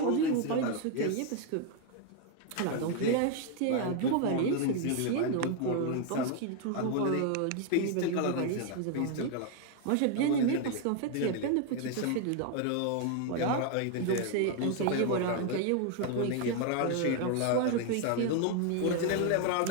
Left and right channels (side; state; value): both; different; correlation 0.01